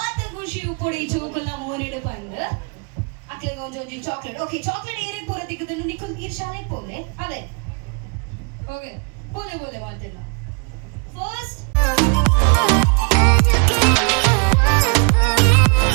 ಖುಷಿ ಉಪ್ಪೊಡಿ ಚೋಕಲ ಮೋನಿಡು ಬಂದು ಅಕ್ಲೆಗೆ ಒಂಜೊಂಜಿ ಚಾಕ್ಲೇಟ್ ಓಕೆ ಚಾಕ್ಲೇಟ್ ಏನೇ ಪೂರ ತಿಕ್ಕುದನ್ನು ನಿಕ್ಕು ನೀರ್ ಶಾಲೆಗೆ ಪೋಲೆ ಅದೇ ಓಕೆ ಬೋಲೆ ಮಾತೆಲ್ಲ ಫಸ್ಟ್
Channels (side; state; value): left; quieter; 36.8 dB